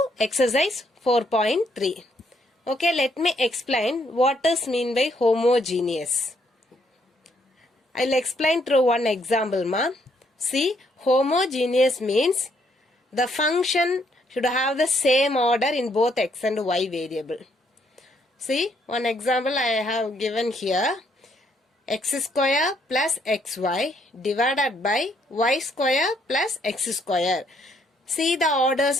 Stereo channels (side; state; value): both; normal; correlation 0.70